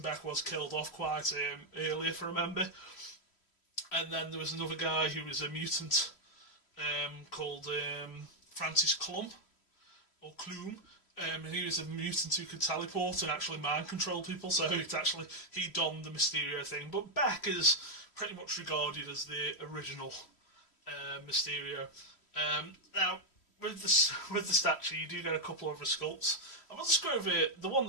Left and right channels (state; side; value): late; right; 3.1 ms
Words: Beck was killed off quite early, if I remember. And then there was another guy who was a mutant called Francis Clum, or Clume. And he was a mutant who could teleport and actually mind control people, so he donned the Mysterio thing. But Beck is pretty much regarded as the original Mysterio. Now, with the statue, you do get a couple of other sculpts. And we'll just go over the one